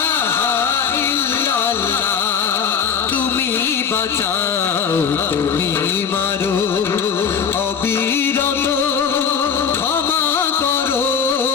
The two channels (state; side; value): quieter; right; 6.9 dB